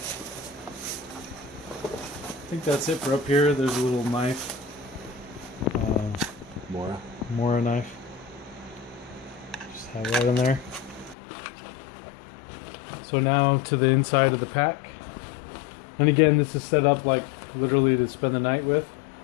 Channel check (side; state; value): right; drops out; at 11.2 s